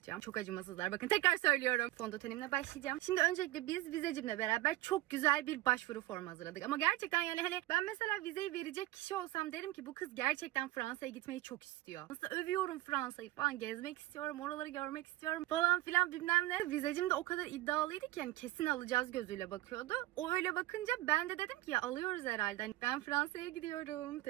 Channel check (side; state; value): left; quieter; 16.6 dB